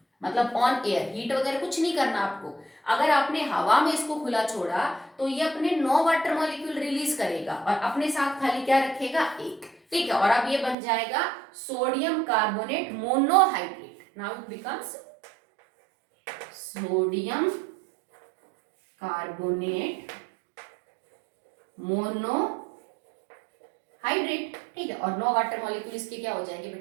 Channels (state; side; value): drops out; left; at 10.8 s